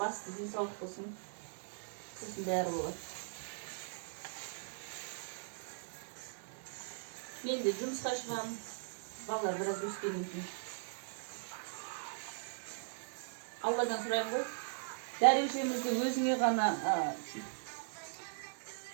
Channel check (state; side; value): silent; left; digital silence